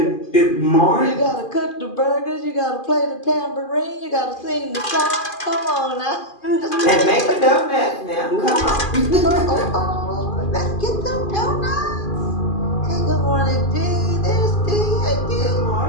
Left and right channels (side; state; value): right; late; 2.4 ms